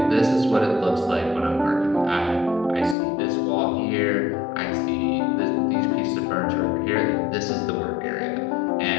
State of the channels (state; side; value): drops out; right; at 3.0 s